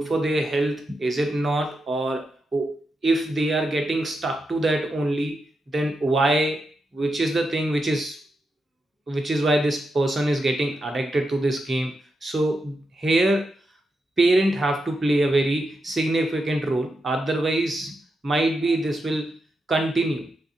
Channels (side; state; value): both; normal; correlation 0.86